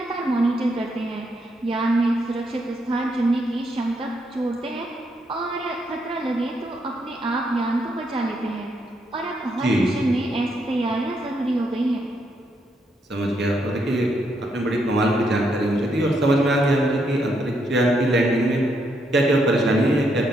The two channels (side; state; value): both; normal; correlation 0.77